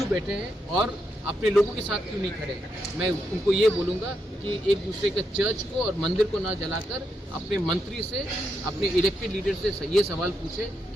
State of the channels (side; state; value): both; normal; correlation 0.82